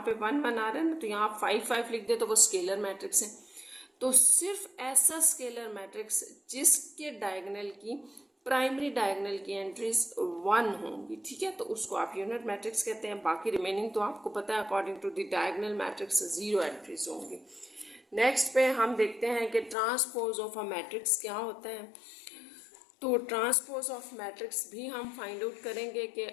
पे 1 1 आ रहा है ना, तो यहाँ 5 5 लिख दे तो वो स्केलर मैट्रिक्स है। तो सिर्फ ऐसा स्केलर मैट्रिक्स जिसके डायगोनल की प्राइमरी डायगोनल की एंट्रीज 1 होंगी, ठीक है, तो उसको आप यूनिट मैट्रिक्स कहते हैं। बाकी रिमेनिंग तो आपको पता है according to the diagonal matrix 0 entries होंगी। नेक्स्ट पे हम देखते हैं कि ट्रांसपोज ऑफ अ मैट्रिक्स क्या होता है। तो ट्रांसपोज ऑफ मैट्रिक्स भी हम फाइंड आउट करेंगे कि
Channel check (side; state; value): right; drops out; at 19.8 s